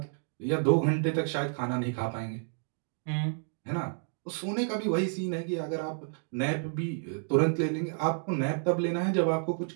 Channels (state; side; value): silent; left; 55 dB below the other